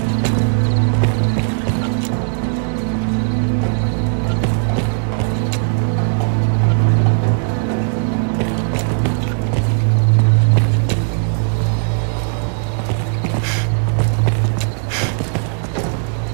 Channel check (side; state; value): left; silent; digital silence